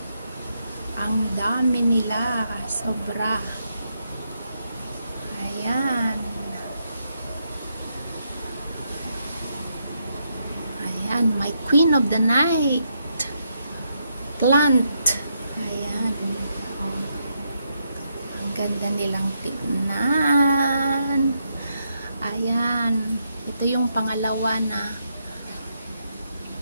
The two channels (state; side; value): inverted; both; correlation -0.80